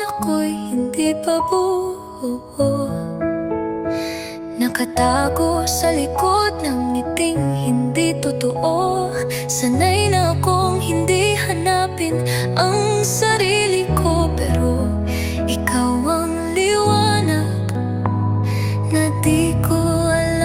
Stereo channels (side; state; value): both; identical; correlation 1.00